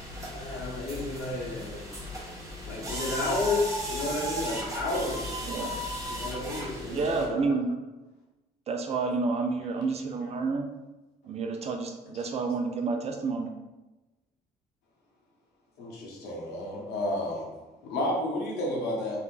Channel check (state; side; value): normal; both; correlation 0.48